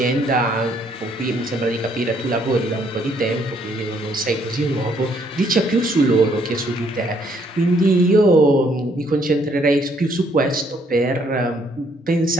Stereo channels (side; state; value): both; normal; correlation 0.68